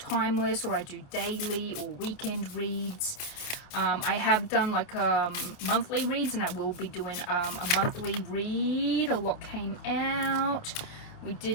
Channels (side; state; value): right; late; 28 ms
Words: or I do daily or weekend reads. I have done like monthly reads, and I will be doing a monthly read. A lot came out. We